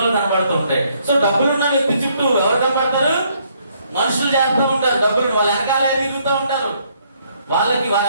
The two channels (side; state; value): both; inverted; correlation -0.69